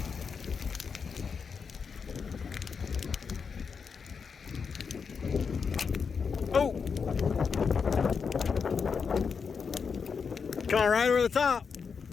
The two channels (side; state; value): right; quieter; 5.8 dB